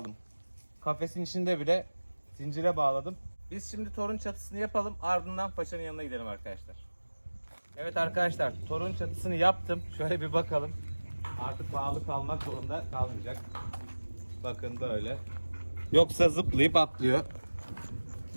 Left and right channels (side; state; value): both; inverted; correlation -1.00